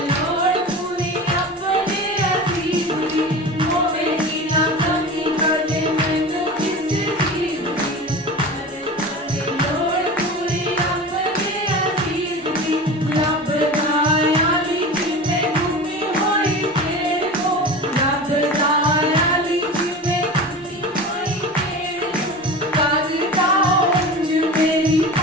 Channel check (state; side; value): normal; both; correlation 0.32